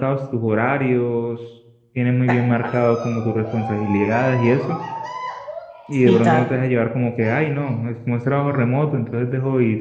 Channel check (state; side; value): identical; both; correlation 1.00